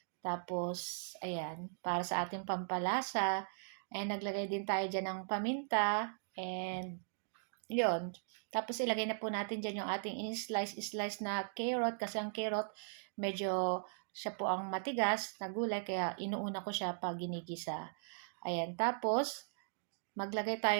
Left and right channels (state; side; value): silent; left; digital silence